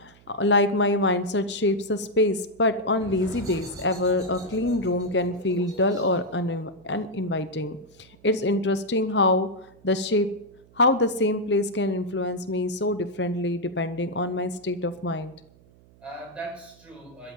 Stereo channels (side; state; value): right; noise; hum, 27 dB below the sound